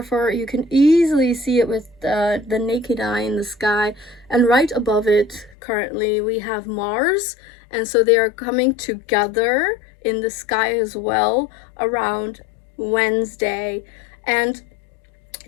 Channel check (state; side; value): drops out; right; at 5.6 s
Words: you can easily see it with the naked eye in the sky. And right above it, currently, we have Mars, and so they are coming together in the sky as well around Wednesday. And